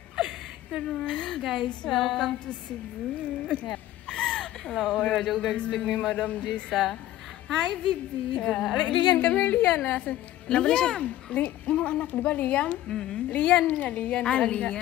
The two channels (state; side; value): quieter; right; 14.0 dB